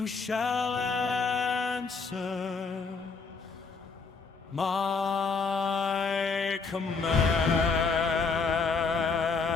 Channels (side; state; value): right; quieter; 4.8 dB